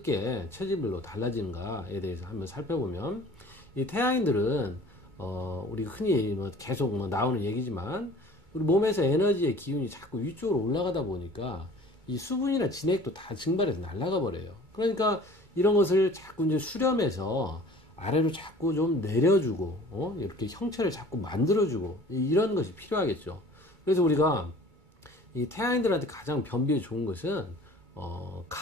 체질별로 달라지는가에 대해서 한번 살펴보면, 이 태양인들은 우리 흔히 계속 나오는 얘기지만 우리 몸에서 에너지의 기운이 자꾸 위쪽으로 올라가다 보니까 이 수분이나 진액도 다 증발해서 날아가 버려요. 그러니까 이런 것을 자꾸 이제 수렴해서 아래로 자꾸 좀 내려주고 이렇게 형체를 자꾸 만들어주고 이런 것이 필요하겠죠. 그래서 우리가 이 태양인들한테 가장 변비에 좋은 것은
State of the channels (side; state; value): left; late; 2.2 ms